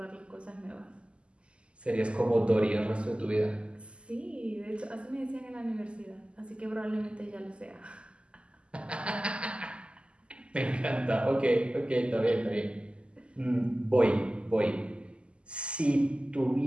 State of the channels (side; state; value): left; late; 0.053 ms